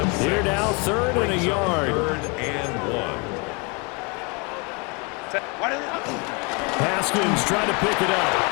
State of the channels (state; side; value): quieter; right; 31.2 dB